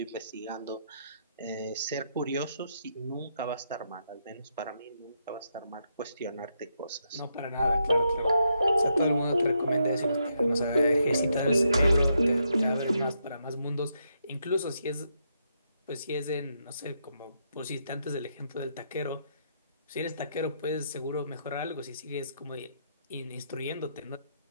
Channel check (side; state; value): both; inverted; correlation -0.79